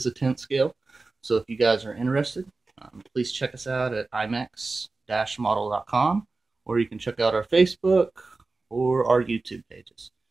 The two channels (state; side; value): quieter; left; 3.6 dB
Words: a 10th scale. So if you guys are interested, please check us out at imex-model.com, or you can check out our Facebook or our YouTube pages.